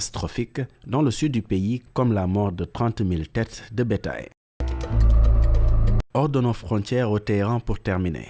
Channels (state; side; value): identical; both; correlation 1.00